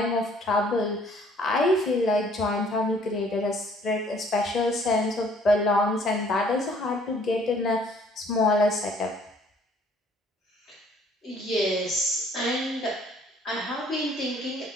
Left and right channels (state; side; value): normal; both; correlation 0.59